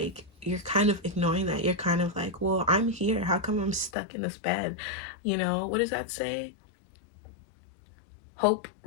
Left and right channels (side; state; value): right; drops out; at 3.9 s